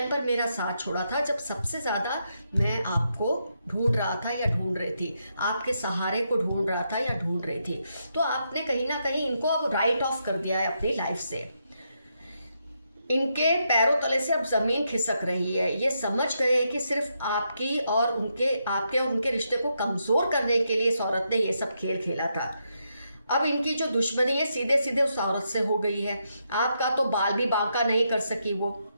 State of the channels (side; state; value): both; inverted; correlation -0.81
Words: पर मेरा साथ छोड़ा था जब सबसे ज़्यादा मैं आपको ढूंढ रहा था या ढूंढ रही थी, आपके सहारे को ढूंढ रहा था या ढूंढ रही थी। तो आपने कहीं ना कहीं इनको अब राइट ऑफ कर दिया है अपनी लाइफ से। इनके पैरों तले से अब जमीन खिसक रही है। ये समझ गए हैं कि सिर्फ आपके और उनके रिश्ते को कमजोर करने के लिए इस औरत ने ये सब खेल खेला था। अब इनकी जो दुश्मनी है सीधे सीधे उस औरत से हो गई है। आपका तो बाल भी बांका नहीं कर सकी वो,